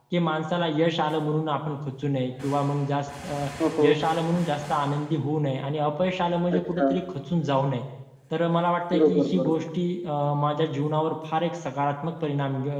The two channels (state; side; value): identical; both; correlation 1.00